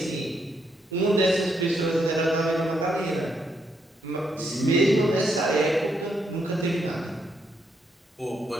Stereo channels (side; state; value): both; normal; correlation 0.77